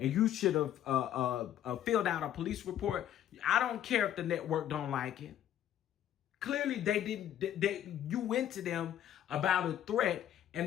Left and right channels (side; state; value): right; quieter; 11.1 dB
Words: you should have filled out a police report. I don't care if the network don't like it. Clearly, they didn't. You went to them about a threat,